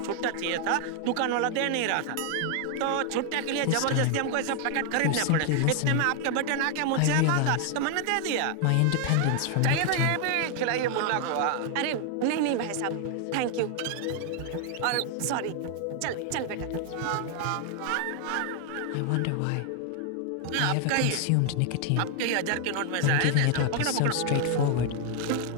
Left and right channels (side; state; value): both; different; correlation 0.00